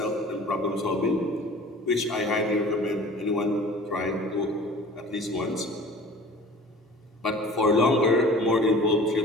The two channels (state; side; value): normal; both; correlation 0.44